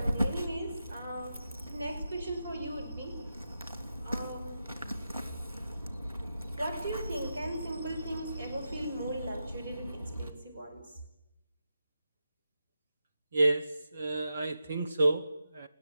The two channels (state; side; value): inverted; both; correlation -0.89